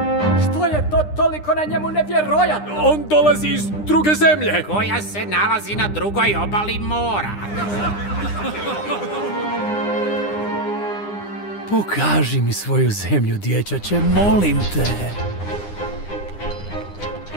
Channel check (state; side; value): late; right; 9.8 ms